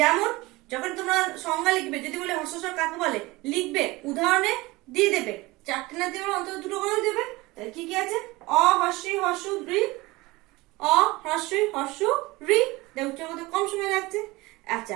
যখন তোমরা সংজ্ঞা লিখবে, যদি বলে হ্রস্বস্বর কাকে বলে, লিখবে উদাহরণে দিয়ে দেবে, চারটে না দিয়ে অন্তত দুটো করে দেবে। তাহলে কি কি আছে? অ হস্যি হস্যু ঋ, অ হ্রস্বই হস্যু ঋ। উচ্চারণ করতে কম সময় লাগছে।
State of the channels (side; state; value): left; quieter; 21.4 dB